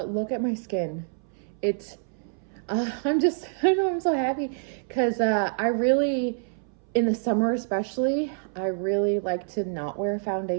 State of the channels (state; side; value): silent; left; 60 dB below the other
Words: look at my skin. It's, I'm so happy because I really, in the summer especially, I really like to not wear